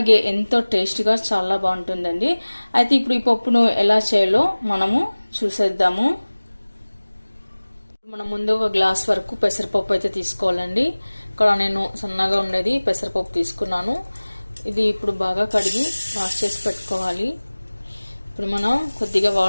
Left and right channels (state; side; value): inverted; both; correlation -1.00